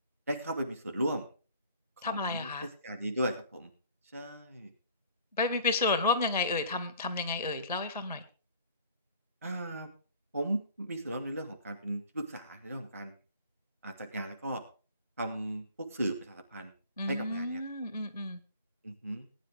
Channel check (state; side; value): inverted; both; correlation -0.48